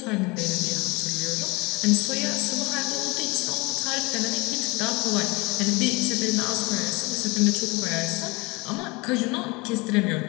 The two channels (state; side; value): quieter; right; 25.4 dB